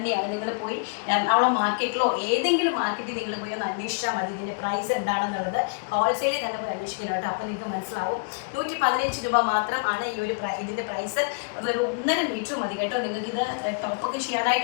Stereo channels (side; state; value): right; quieter; 36.2 dB